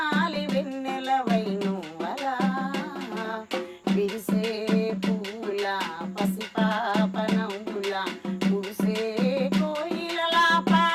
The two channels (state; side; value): identical; both; correlation 1.00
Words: వెన్నెల వైనువలా, విరిసే పూల పసిపాప నవ్వుల, పూసే కోయిలలా,